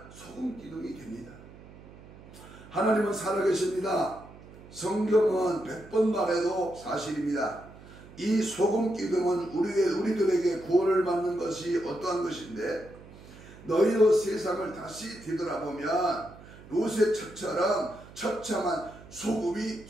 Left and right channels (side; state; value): right; noise; hum, 19 dB below the sound